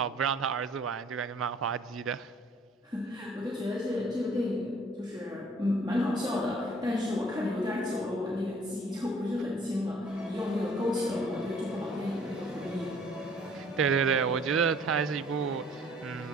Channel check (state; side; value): normal; both; correlation 0.57